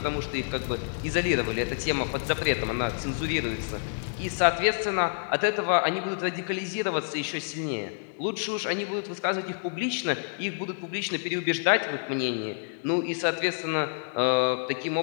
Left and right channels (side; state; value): right; silent; digital silence